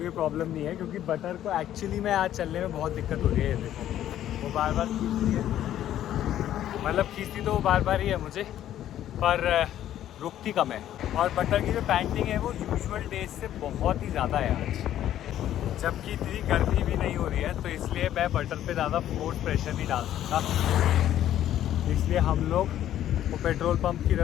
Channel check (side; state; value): right; quieter; 11.8 dB